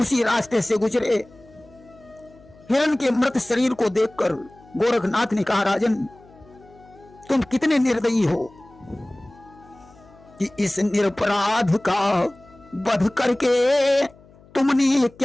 रास्ते से गुजरे। हिरण के मृत शरीर को देखकर गोरखनाथ ने कहा राजन, तुम कितने निर्दयी हो कि इस निरपराध का वध करके तुमने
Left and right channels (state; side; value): noise; left; hum, 26 dB below the sound